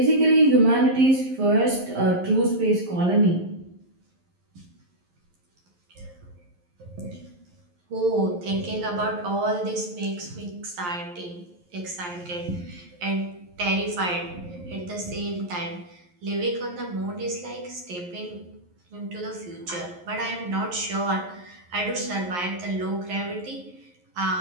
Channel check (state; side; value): late; left; 11 ms